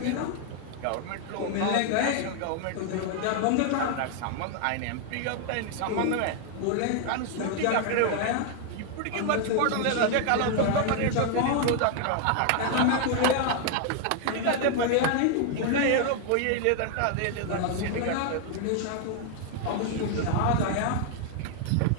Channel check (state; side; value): different; both; correlation 0.00